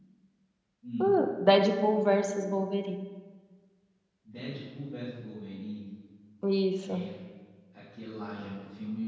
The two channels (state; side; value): identical; both; correlation 1.00